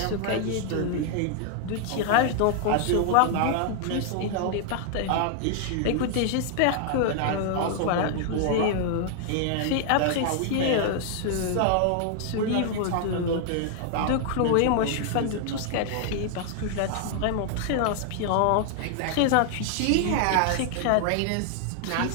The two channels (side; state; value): both; different; correlation 0.00